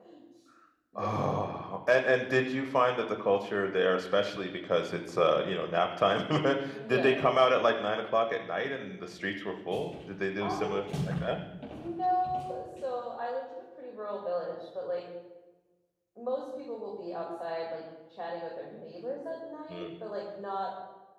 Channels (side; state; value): both; identical; correlation 1.00